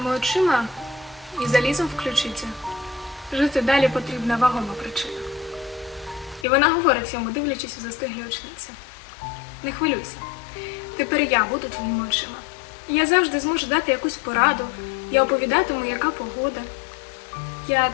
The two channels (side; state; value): right; drops out; at 6.5 s